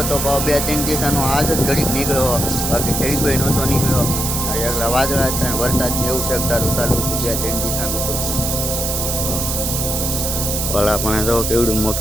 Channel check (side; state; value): right; noise; hiss, 1 dB below the sound